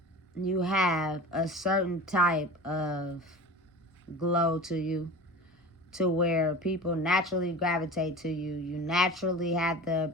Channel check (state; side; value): normal; both; correlation 0.35